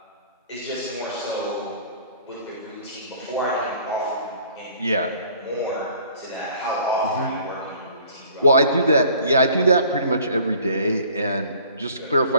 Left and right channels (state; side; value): inverted; both; correlation -0.53